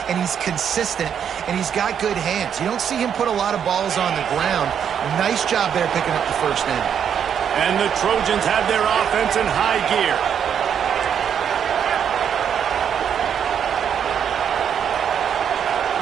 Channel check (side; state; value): left; quieter; 8.2 dB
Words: and he's consistent, and he's got good hands. You don't see him put a lot of balls on the ground. Nice job there picking up the first down. And the Trojans have their offense in high gear.